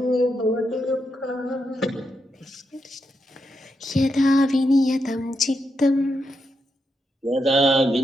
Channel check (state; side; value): normal; both; correlation 0.84